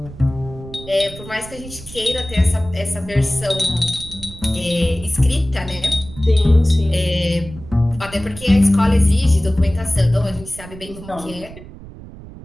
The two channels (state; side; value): noise; right; rumble, 16 dB below the sound